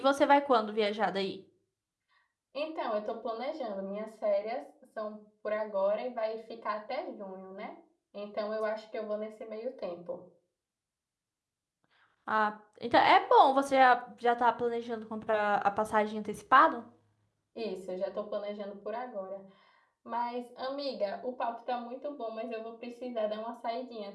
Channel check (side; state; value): both; identical; correlation 1.00